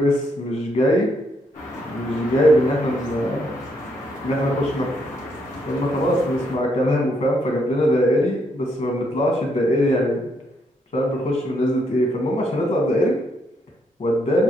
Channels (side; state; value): both; normal; correlation 0.75